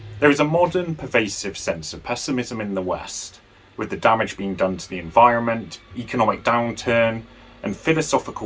There is a modern, pervasive sense of pessimism in the West, with the damage being done to the environment, economic downturn, and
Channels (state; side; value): identical; both; correlation 1.00